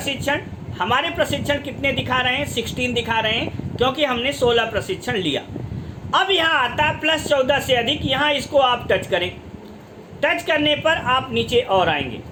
हमारे प्रशिक्षण कितने दिखा रहे हैं, 16 दिखा रहे हैं, क्योंकि हमने 16 प्रशिक्षण लिया। अब यहाँ आता है प्लस 14 से अधिक, यहाँ इसको आप टच करें। टच करने पर आप नीचे और आएंगे,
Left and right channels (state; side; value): identical; both; correlation 1.00